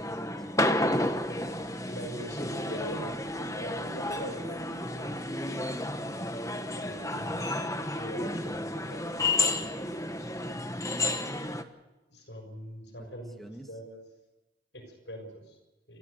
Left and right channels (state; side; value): normal; both; correlation 0.44